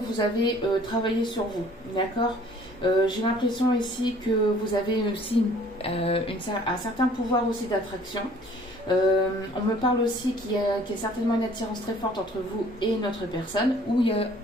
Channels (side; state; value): both; normal; correlation 0.55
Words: avez travaillé sur vous, d'accord. J'ai l'impression ici que vous avez aussi un certain pouvoir aussi d'attraction. On me parle aussi qu'il y a certainement une attirance très forte entre vous et une autre personne, ou